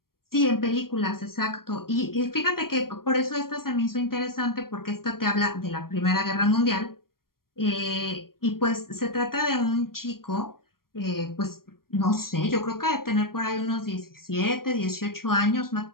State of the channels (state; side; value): late; right; 0.92 ms